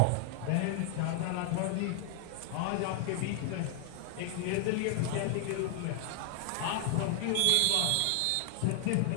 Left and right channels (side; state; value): both; different; correlation 0.00